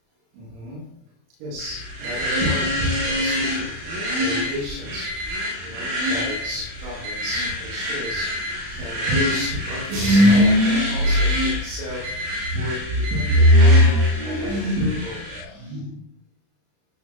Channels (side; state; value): left; late; 35 ms